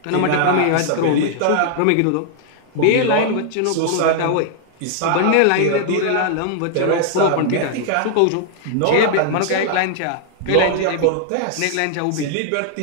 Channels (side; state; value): both; different; correlation -0.01